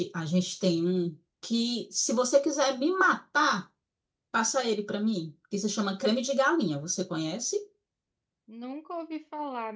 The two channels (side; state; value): both; identical; correlation 1.00